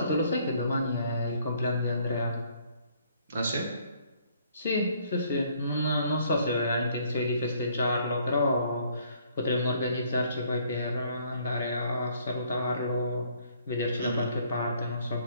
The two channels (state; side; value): inverted; both; correlation -0.63